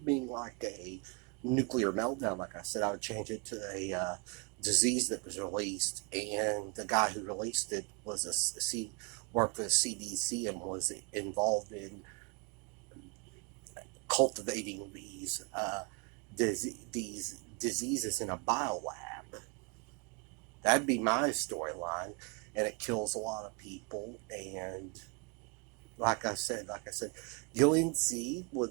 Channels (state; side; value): quieter; left; 30.6 dB